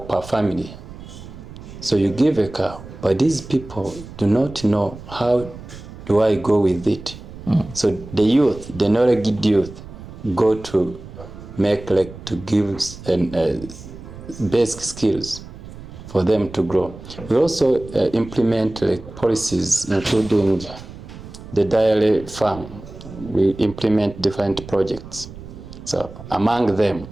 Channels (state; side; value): noise; right; rumble, 15 dB below the sound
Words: per family. So you give a cow, but these people do not know how do I go with it. So the youth, the knowledge youth, go to make like to give basic skills for them to grow. We also implement like policies, including the dairy farm. We implement different projects. So among them,